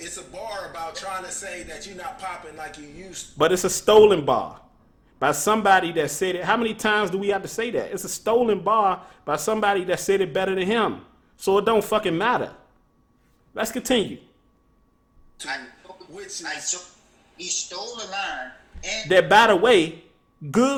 a bar about trying to say that you're not popping like you used to. But it's a stolen bar by somebody that said it. How many times do we have to say that? It's a stolen bar by somebody that said it better than him. So it don't fucking matter. Let's continue. He stole a line. And That, by the way,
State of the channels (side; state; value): both; identical; correlation 1.00